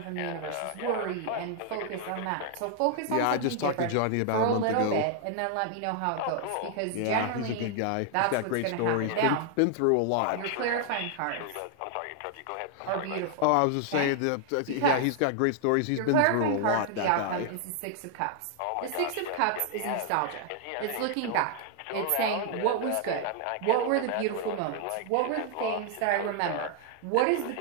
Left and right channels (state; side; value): different; both; correlation 0.00